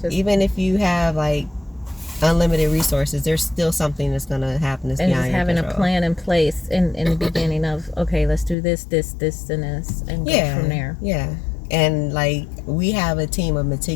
Even if you have like unlimited resources, there's still something that's going to happen that's beyond your control. And just having a plan in place in the beginning of, okay, let's do this, and this, and go from there. Yeah. And like, we have a team of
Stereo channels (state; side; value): drops out; right; at 8.6 s